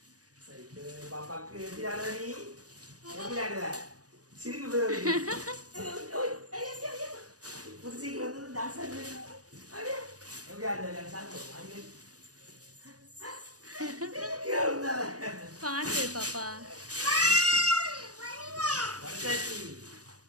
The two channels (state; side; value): late; left; 0.67 ms